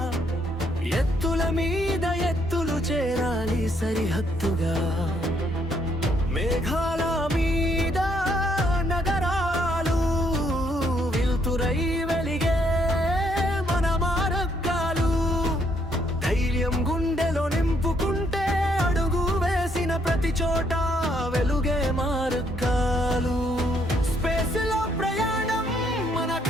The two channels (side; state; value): both; normal; correlation 0.71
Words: ఎత్తుల మీద ఎత్తులు చేరాలి సరిహద్దుగా. మేఘాల మీద నగరాలు వెలుతురై వెలిగే మన మార్గాలు. ధైర్యం గుండెలో నింపుకుంటే అడుగు వేసిన ప్రతి చోట వెలుగే మార్గాలు. స్పేస్ లో ప్రయాణం మన